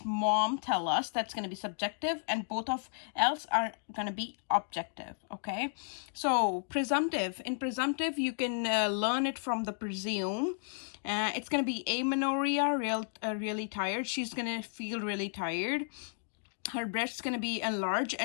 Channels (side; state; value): right; silent; digital silence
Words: mom tell us. That's going to be subjective, and both of else are going to be objective. Okay, so presumptive. In presumptive, you can learn it from the presume. It's going to be amenorrhea, really tired. She's going to feel really tired. Her breast's going to be enlarged